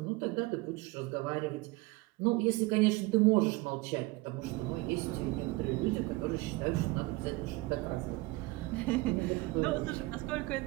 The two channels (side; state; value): left; quieter; 21.8 dB